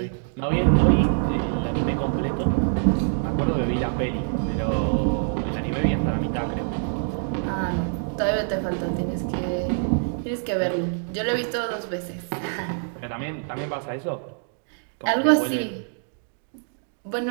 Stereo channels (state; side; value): silent; left; digital silence